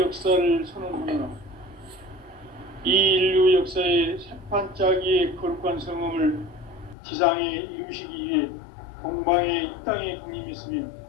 선언하노라. 이 인류 역사의 새판짜기의 거룩한 성음을 지상에 이루시기 위해 동방의 이 땅에 강림했으며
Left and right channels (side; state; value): right; drops out; at 7.0 s